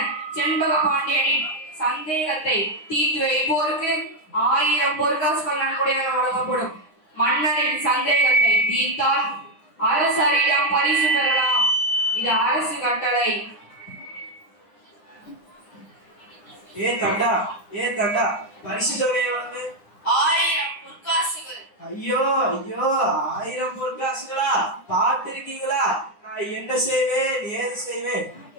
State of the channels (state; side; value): late; right; 9.8 ms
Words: செண்பக பாண்டியனின் சந்தேகத்தை தீர்த்து வைப்போருக்கு 1000 பொற்காசுகள் நன்கொடையாக வழங்கப்படும். மன்னரின் சந்தேகத்தை தீர்த்தால் அரசரிடம் பரிசு பெறலாம். இது அரசு கட்டளை. தண்டா பரிசு தொகை எவ்வளவு? 1000 பொற்காசுகள். ஐயோ 1000 பொற்காசுகளா? பார்த்திருக்கீங்களா நான் என்ன செய்வேன் ஏது செய்வேன்?